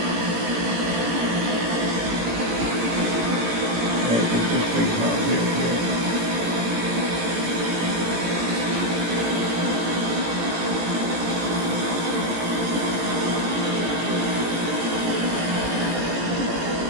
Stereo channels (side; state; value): left; late; 18 ms